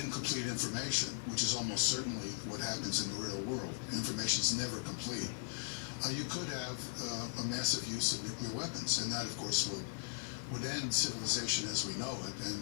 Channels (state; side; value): silent; right; 52 dB below the other